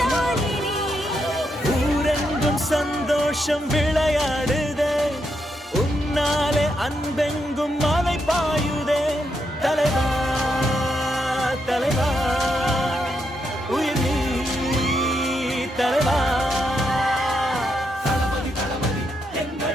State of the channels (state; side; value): normal; both; correlation 0.81